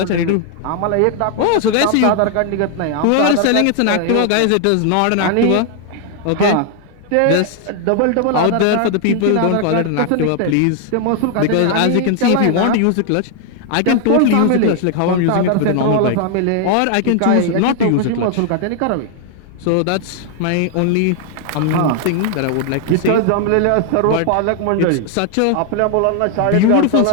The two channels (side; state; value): both; different; correlation 0.00